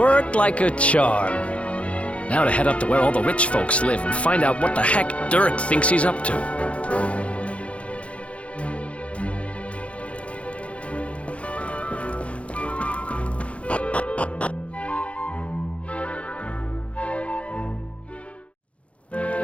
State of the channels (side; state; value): right; late; 0.062 ms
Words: like a charm. Now to head up to where all the rich folks live and find out what the heck Dirk thinks he's up to.